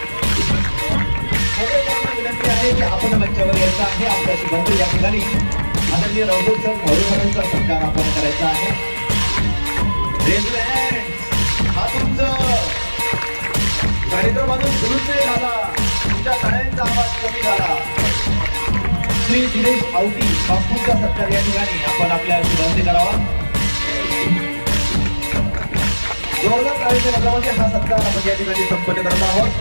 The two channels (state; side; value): inverted; both; correlation -1.00